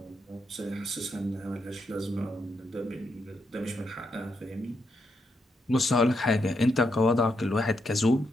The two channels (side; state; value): both; normal; correlation 0.81